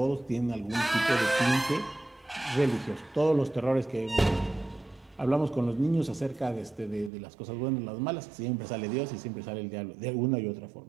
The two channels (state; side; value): drops out; left; at 7.1 s